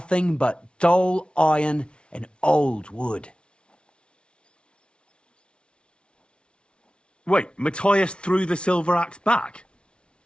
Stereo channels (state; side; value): late; right; 0.058 ms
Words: but dull iron and old wood. Wait, Matthias threw the silver axe back?